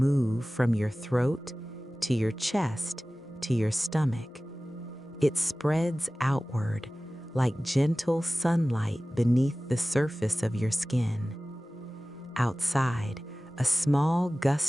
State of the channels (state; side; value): normal; both; correlation 0.97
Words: from your throat to your chest to your stomach. It spreads outward like gentle sunlight beneath the surface of your skin. Outside, a small